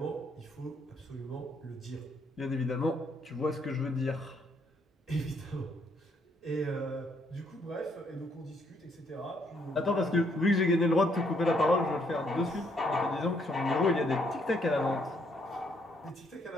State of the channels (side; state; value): both; normal; correlation 0.71